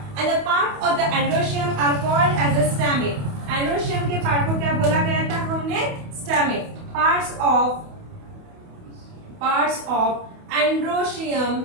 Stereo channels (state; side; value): late; left; 28 ms